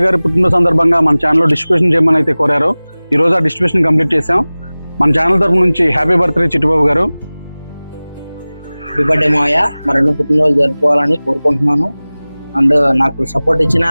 గారి పుట్టిన సందర్భంగా మన ఛానల్లో డిస్ట్రిబ్యూషన్ చేయమని అయితే కోరారు. ఈ రోజు ఆ డిస్ట్రిబ్యూషన్ కంప్లీట్ చేసాం. మన ఛానల్ తరఫు నుంచి హ్యాపీ బర్త్డే చిట్టుబాబు గారు. హ్యాపీ బర్త్డే మావయ్య, మరెన్నో పుట్టినరోజు జరుపుకోవాలని కోరుకుంటున్నాను. అండ్ నాకు సపోర్ట్ ఇచ్చిన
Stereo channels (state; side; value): inverted; both; correlation -0.99